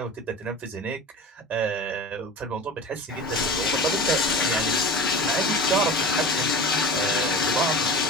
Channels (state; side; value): normal; both; correlation 0.34